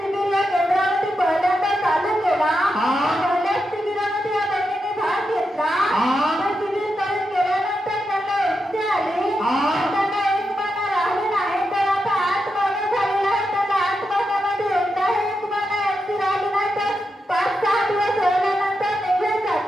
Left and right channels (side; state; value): both; normal; correlation 0.86